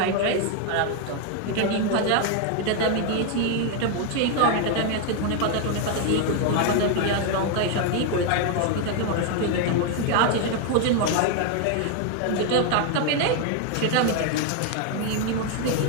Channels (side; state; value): both; different; correlation 0.01